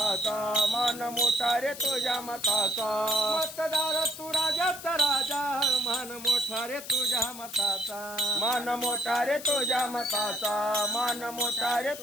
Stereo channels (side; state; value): left; noise; hiss, 13 dB below the sound